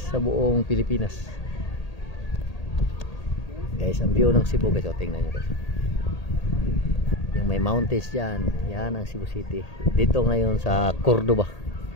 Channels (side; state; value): right; late; 1.8 ms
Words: buong Pilipinas. Guys, ang view ng Cebu guys, tingnan nyo guys. Yung may mountains dyan, yan ang Cebu City. Dito ngayon sa Cordoba.